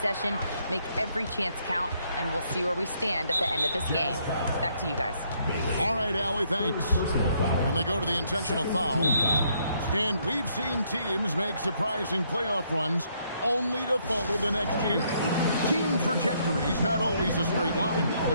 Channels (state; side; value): inverted; both; correlation -0.71